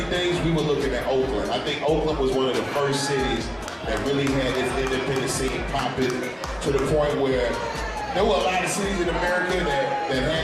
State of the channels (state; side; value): identical; both; correlation 1.00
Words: days, we were looking at Oakland. I think Oakland was one of the first cities that really had its independent scene popping to the point where there were a lot of cities in America that